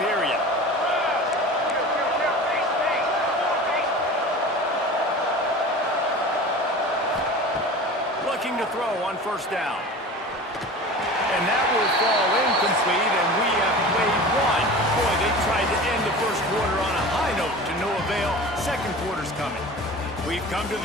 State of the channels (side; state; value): both; normal; correlation 0.36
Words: Looking to throw on first down. And that will fall incomplete, and we have played one. Boy, they tried to end the first quarter on a high note to no avail. Second quarter's coming. We've come to